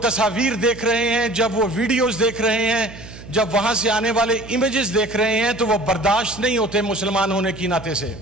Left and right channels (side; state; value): right; noise; hum, 16 dB below the sound